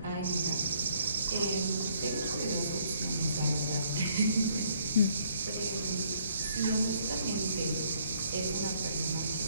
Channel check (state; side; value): inverted; both; correlation -0.66